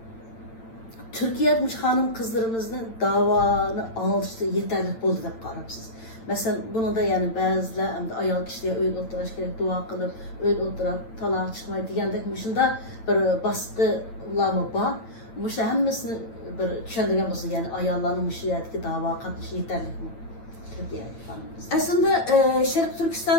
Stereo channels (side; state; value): right; late; 8.9 ms